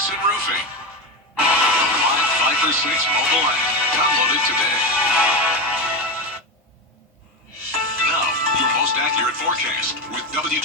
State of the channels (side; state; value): both; normal; correlation 0.16